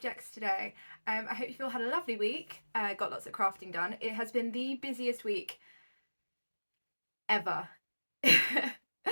today. I hope you've all had a lovely week, got lots of crafting done. It has been the busiest week ever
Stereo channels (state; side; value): inverted; both; correlation -1.00